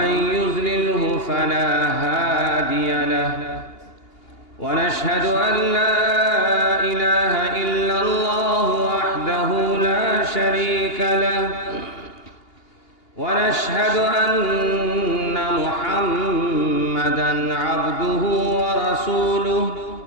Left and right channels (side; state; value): right; late; 2.8 ms